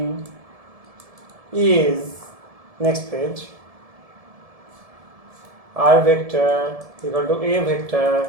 is, next page, r vector equal to a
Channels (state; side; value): late; left; 1.7 ms